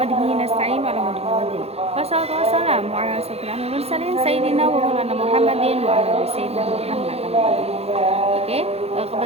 bihi nasta'in wa ala muhammadin. Wassalatu wassalamu ala asyrofil mursalin sayyidina wa maulana Muhammadin wa ala ali sayyidina Muhammad. Oke, kepada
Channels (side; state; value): left; late; 0.30 ms